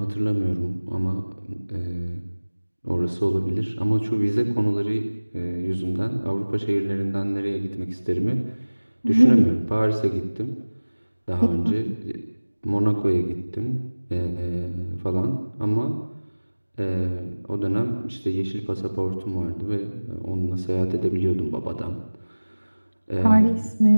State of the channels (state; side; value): inverted; both; correlation -1.00